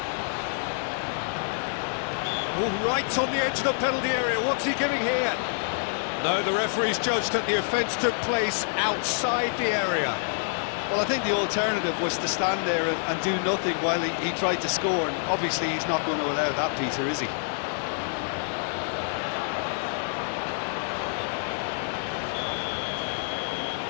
Oh, right on the edge of the penalty area. What's he giving here? No, the referee's judged that the offence took place outside the area. Well, I think the alternative was to stand there and do nothing while he tried to score, and obviously he's not going to allow that, Peter, is he?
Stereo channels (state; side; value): silent; right; digital silence